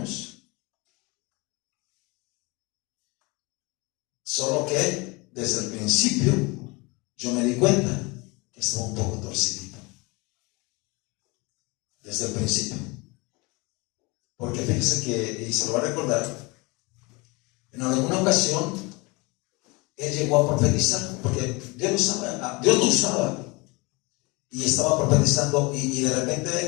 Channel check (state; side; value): quieter; right; 26.2 dB